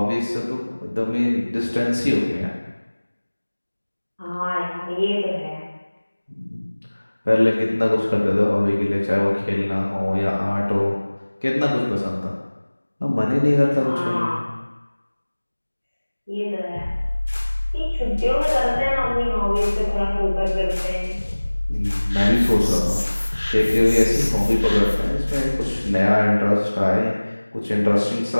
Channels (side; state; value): both; inverted; correlation -1.00